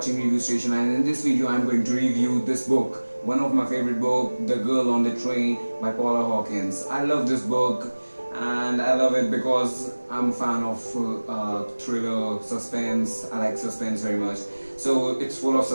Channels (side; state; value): both; inverted; correlation -1.00